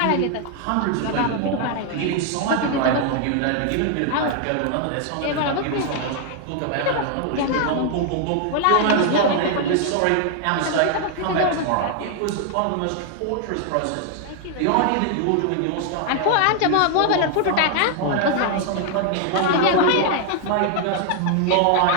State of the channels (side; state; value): both; different; correlation 0.00